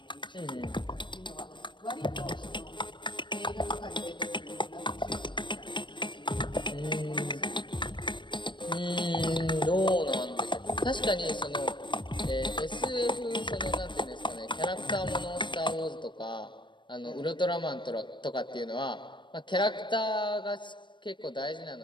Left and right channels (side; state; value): right; late; 0.23 ms